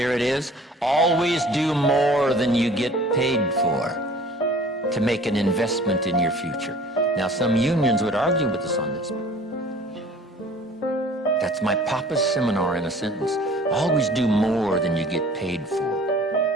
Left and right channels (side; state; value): both; normal; correlation 0.49